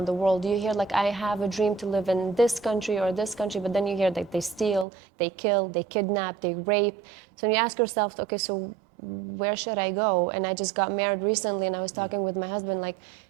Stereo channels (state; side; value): drops out; left; at 4.9 s